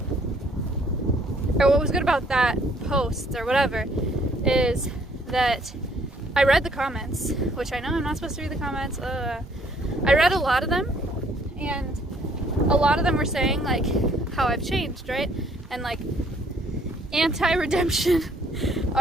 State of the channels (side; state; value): both; normal; correlation 0.63